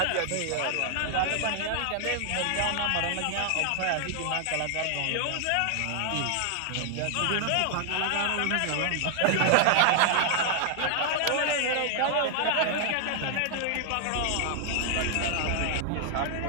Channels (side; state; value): both; different; correlation 0.00